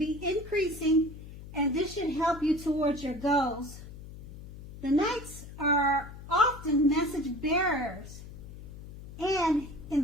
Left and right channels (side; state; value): left; noise; hum, 14 dB below the sound